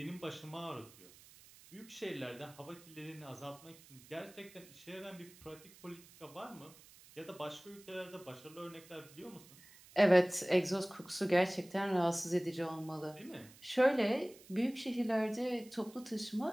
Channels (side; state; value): right; noise; hiss, 22 dB below the sound